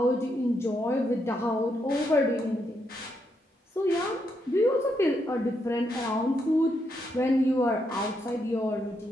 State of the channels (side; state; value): both; normal; correlation 0.79